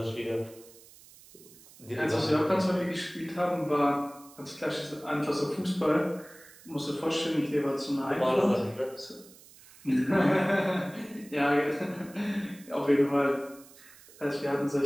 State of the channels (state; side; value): noise; right; hiss, 22 dB below the sound